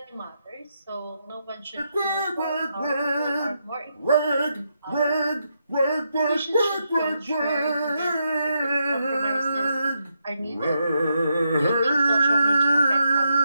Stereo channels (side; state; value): both; inverted; correlation -0.82